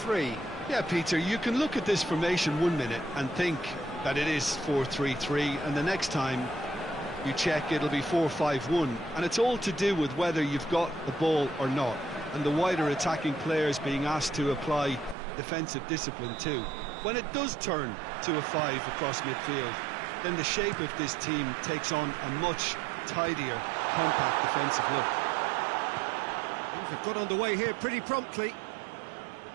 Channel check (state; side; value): drops out; left; at 15.2 s